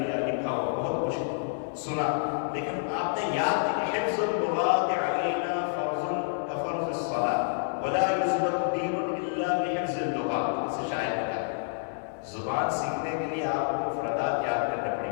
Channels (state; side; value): silent; right; 59 dB below the other